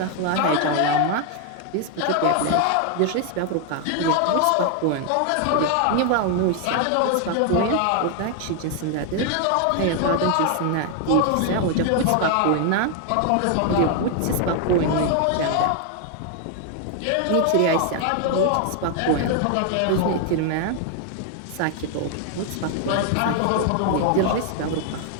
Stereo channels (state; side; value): different; both; correlation 0.00